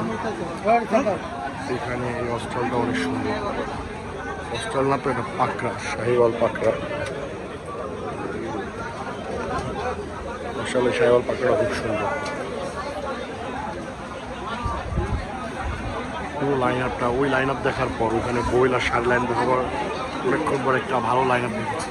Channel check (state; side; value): identical; both; correlation 1.00